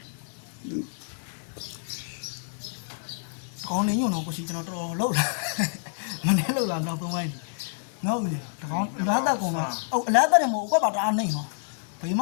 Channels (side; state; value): right; silent; digital silence